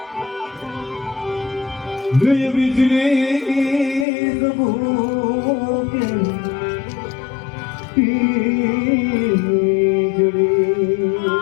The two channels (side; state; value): right; drops out; at 4.0 s